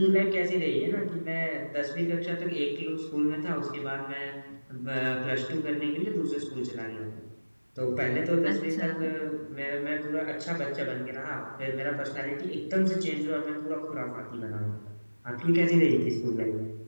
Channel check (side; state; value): both; inverted; correlation -1.00